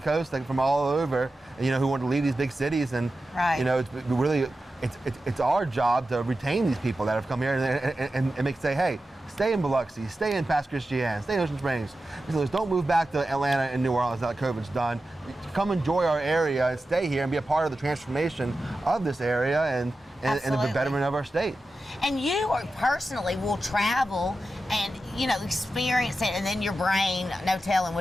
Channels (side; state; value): both; normal; correlation 0.92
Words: from all over, you know, who wanted to leave these big cities. And, you know, it's really, it's our job to retain these people that have come here and make say, hey, stay in Biloxi, stay in Pass Christian, stay in Ocean Springs. So don't move back to Atlanta and New Orleans now that COVID's done. Come enjoy our area and stay here and be a part of the transformation of this area and the betterment of our state. And you personally will travel and, you know, experience it, and then your brain, no telling